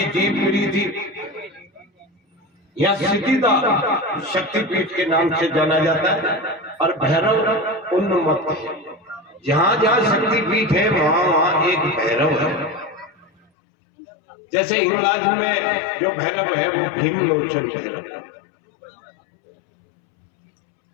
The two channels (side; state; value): right; drops out; at 13.5 s